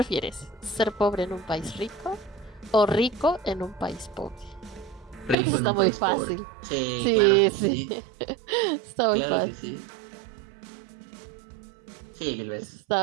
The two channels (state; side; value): drops out; left; at 5.4 s